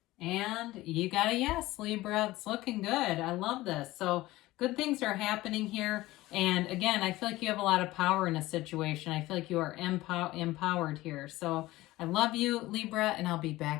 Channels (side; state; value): right; quieter; 17.9 dB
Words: And you got a yes, Libra. It's looking good. I love this. So good things are happening here. And again, I feel like you have a lot of power in a situation. I feel like you are empowered here. So I love you, Libra, and I'll be